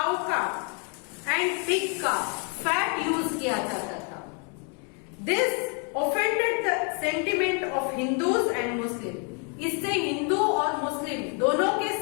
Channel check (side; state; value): right; quieter; 37.9 dB